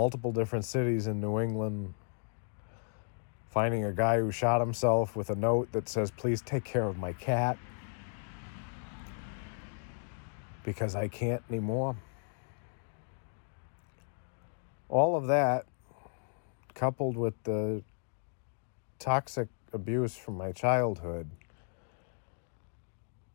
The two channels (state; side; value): silent; right; digital silence